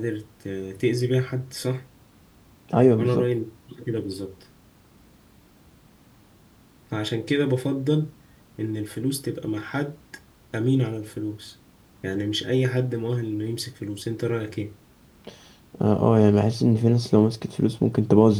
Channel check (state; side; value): identical; both; correlation 1.00